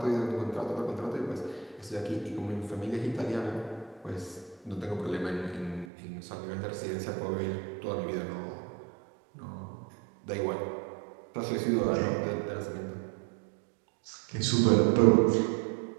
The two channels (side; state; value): left; drops out; at 5.9 s